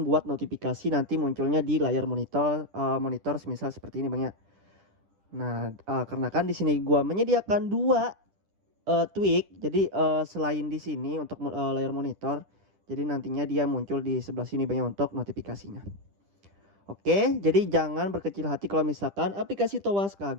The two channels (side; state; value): left; late; 10 ms